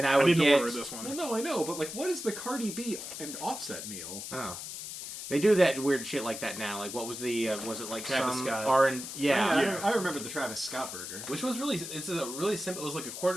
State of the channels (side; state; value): left; noise; hiss, 8 dB below the sound